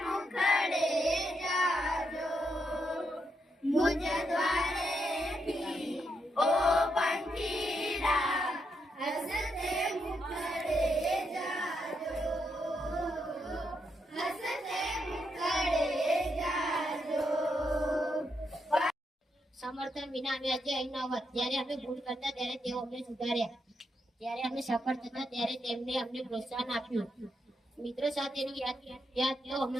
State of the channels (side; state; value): both; normal; correlation 0.81